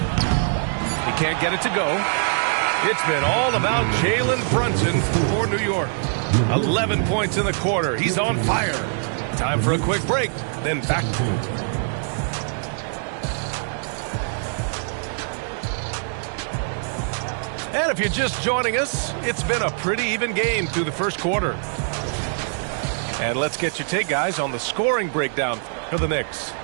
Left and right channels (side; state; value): left; silent; 63 dB below the other